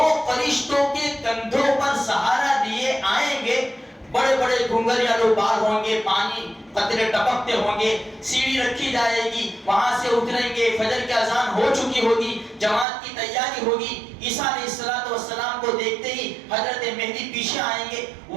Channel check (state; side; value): drops out; left; at 12.9 s